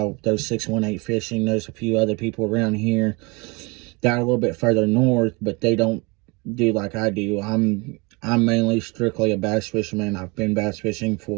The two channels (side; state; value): left; quieter; 28.0 dB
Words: there's 618 Fishing. There's a few other people around here that are a little bit further north, but they don't do like I do. I'm mainly strictly a bass fisherman. I've been bass fishing